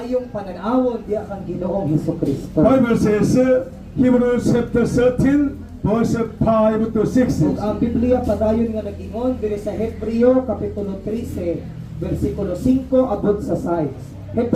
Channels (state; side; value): identical; both; correlation 1.00